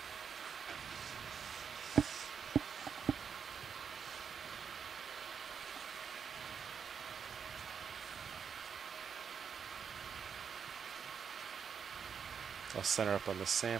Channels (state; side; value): quieter; left; 6.9 dB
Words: I'll center up on the